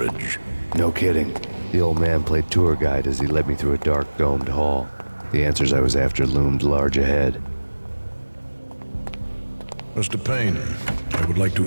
No kidding. The old man played tour guide as he led me through a dark, domed hall. The answers I was after loomed large ahead. Mr. Payne, I would like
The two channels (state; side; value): inverted; both; correlation -1.00